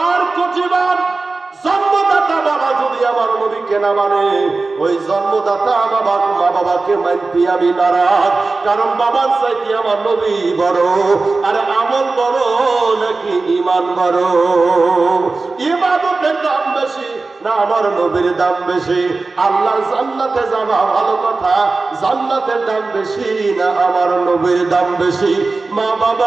কোটি বার। জন্মদাতা বাবা যদি আমার নবীকে না মানে, ওই জন্মদাতা মা বাবাকে মানতে আমি নারাজ। কারণ বাবার চাইতে আমার নবী বড়। আর আমল বড় নাকি ঈমান বড়? ইবাদতের দাম বেশি না আমার নবীর দাম বেশি? আল্লাহর জান্নাতে যাওয়া ভালো কথা, জান্নাতের দাম বেশি না আমার নবীর দাম বেশি? মা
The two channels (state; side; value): quieter; left; 3.7 dB